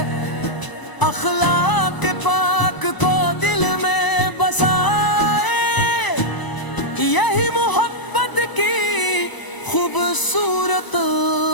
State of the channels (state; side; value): late; right; 1.0 ms